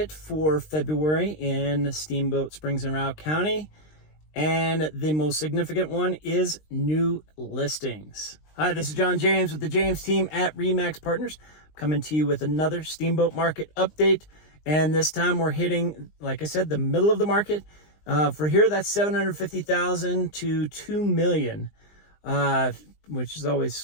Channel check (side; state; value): right; late; 20 ms